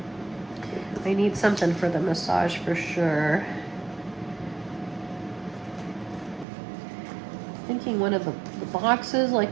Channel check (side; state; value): left; drops out; at 6.5 s